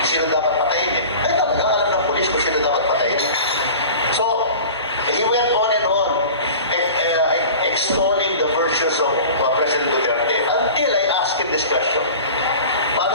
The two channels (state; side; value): inverted; both; correlation -0.39